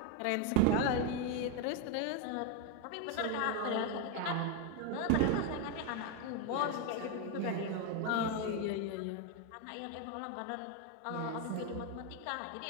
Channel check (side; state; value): both; different; correlation 0.02